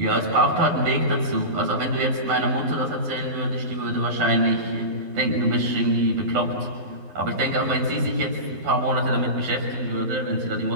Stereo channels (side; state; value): left; late; 12 ms